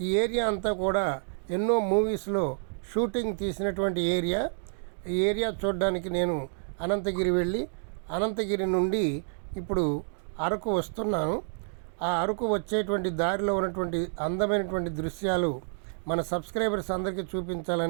ఈ ఏరియా అంతా కూడా ఎన్నో మూవీస్లో షూటింగ్ తీసినటువంటి ఏరియా. ఈ ఏరియా చూడడానికి నేను అనంతగిరి వెళ్ళి అనంతగిరి నుండి ఇప్పుడు అరకు వస్తున్నాను. ఆ అరకు వచ్చేటువంటి దారిలో ఉన్నటువంటి అందమైనటువంటి దృశ్యాలు మన సబ్స్క్రైబర్స్ అందరికీ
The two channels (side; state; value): left; silent; 59 dB below the other